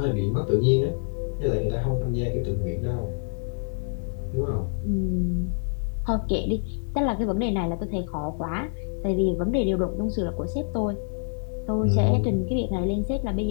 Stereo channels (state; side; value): silent; right; digital silence